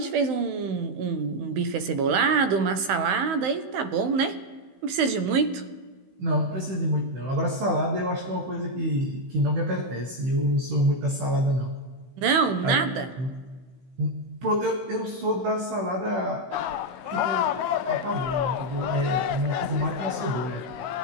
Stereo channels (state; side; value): late; left; 16 ms